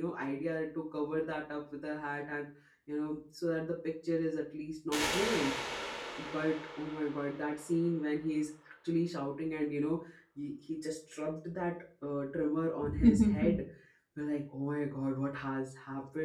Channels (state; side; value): identical; both; correlation 1.00